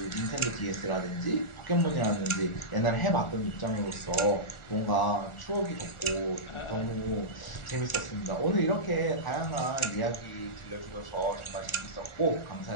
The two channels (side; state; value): right; late; 1.4 ms